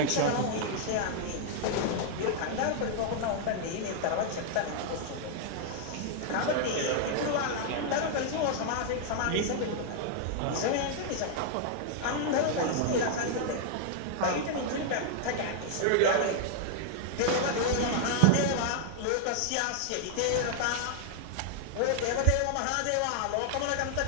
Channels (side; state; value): both; different; correlation 0.00